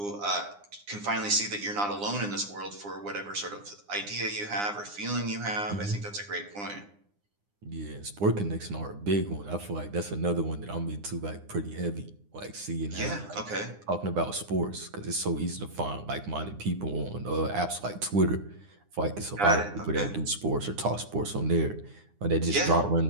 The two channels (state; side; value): late; left; 9.8 ms